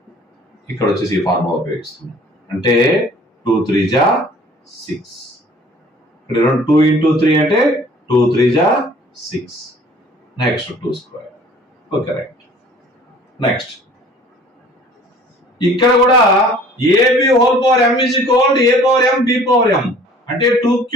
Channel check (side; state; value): both; normal; correlation 0.51